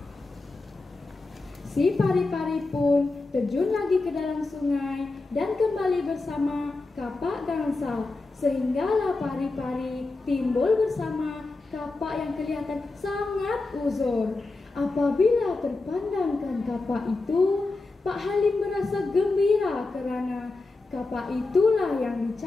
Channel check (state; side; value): quieter; right; 3.4 dB